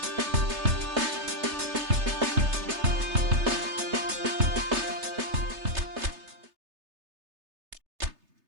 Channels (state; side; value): late; left; 3.3 ms